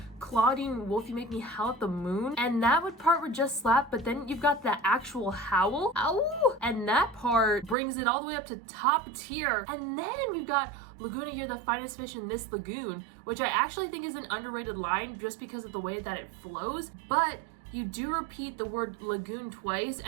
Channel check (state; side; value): drops out; left; at 7.8 s